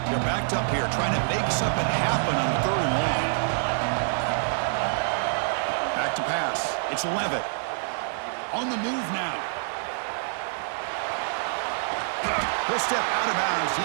They're backed up here, trying to make something happen on 3rd and long. Back to pass. It's Levitt. On the move now. He'll step out of bounds.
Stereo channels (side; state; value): left; silent; digital silence